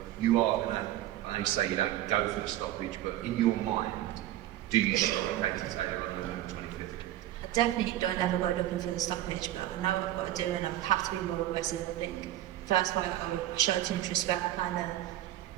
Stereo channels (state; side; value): quieter; left; 13.7 dB